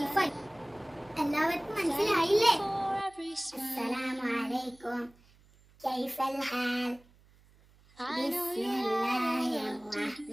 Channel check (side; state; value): right; noise; hum, 28 dB below the sound